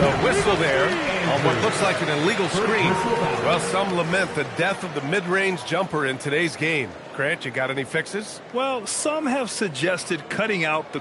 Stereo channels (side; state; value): both; identical; correlation 1.00